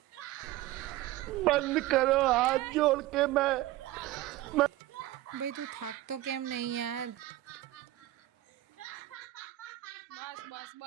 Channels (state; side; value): quieter; left; 16.2 dB